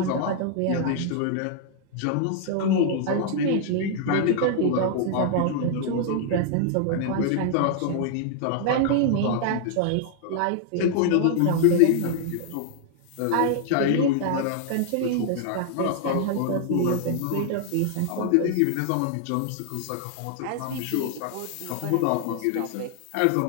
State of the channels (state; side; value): different; both; correlation 0.00